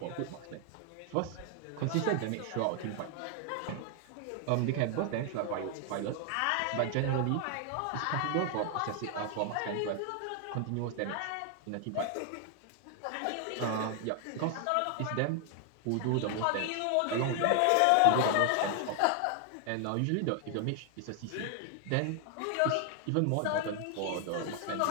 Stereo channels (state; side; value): different; both; correlation 0.00